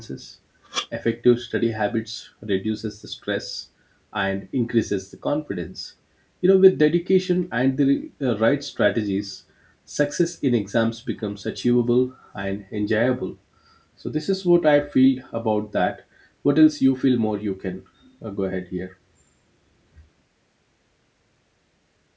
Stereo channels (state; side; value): identical; both; correlation 1.00